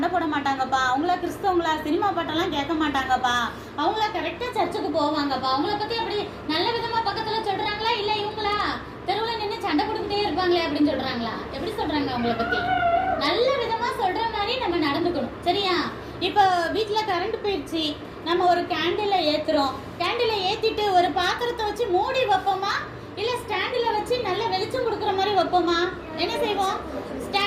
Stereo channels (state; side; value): identical; both; correlation 1.00